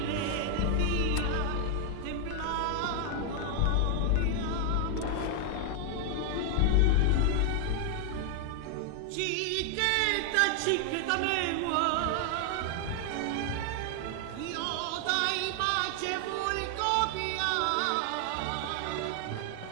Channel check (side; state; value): both; different; correlation 0.00